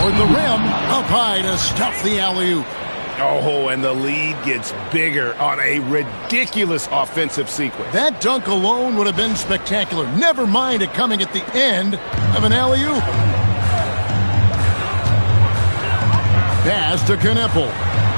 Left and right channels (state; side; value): inverted; both; correlation -1.00